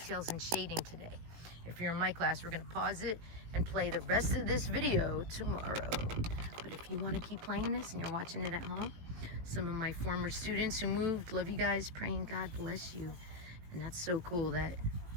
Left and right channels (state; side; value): late; left; 18 ms